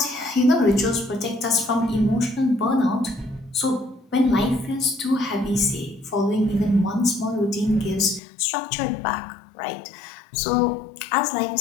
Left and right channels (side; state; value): right; drops out; at 8.2 s